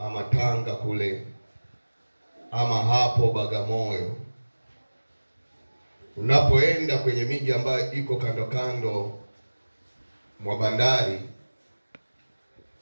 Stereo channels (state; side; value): inverted; both; correlation -1.00